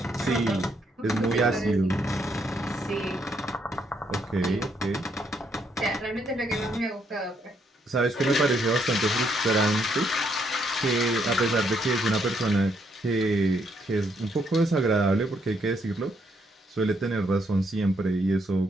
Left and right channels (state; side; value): normal; both; correlation 0.74